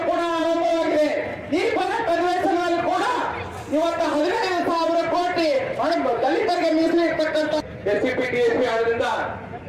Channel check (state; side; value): identical; both; correlation 1.00